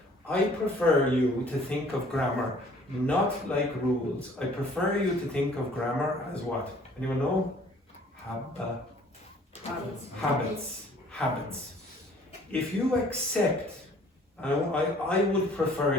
I prefer you to think of grammar not like rules. I prefer you to think of grammar as what? Anyone know? Habits. If you accept, I would prefer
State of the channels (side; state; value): both; normal; correlation 0.55